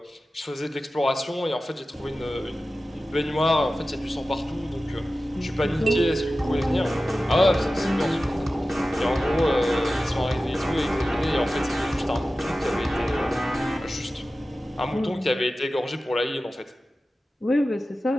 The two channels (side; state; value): both; normal; correlation 0.95